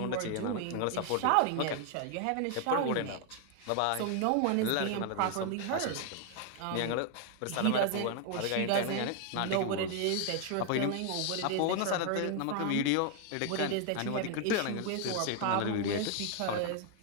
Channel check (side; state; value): both; different; correlation 0.00